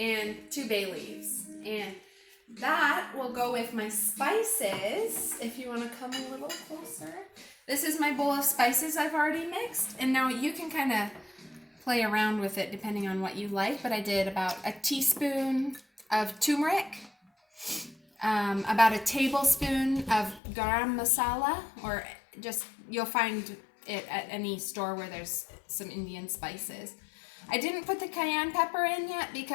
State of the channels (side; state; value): right; drops out; at 20.4 s